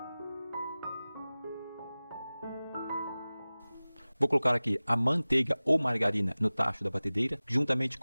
Vou colocar aqui a manteiga ou margarina no tacho da batedeira, juntamente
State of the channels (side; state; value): both; inverted; correlation -0.98